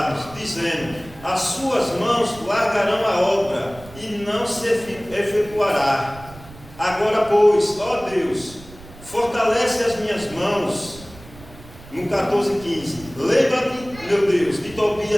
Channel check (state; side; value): noise; right; rumble, 19 dB below the sound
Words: dizendo: as suas mãos largarão a obra e não se efetuará. Agora, pois, ó Deus, fortalece as minhas mãos. No 14:15, lembra-te, meu Deus, de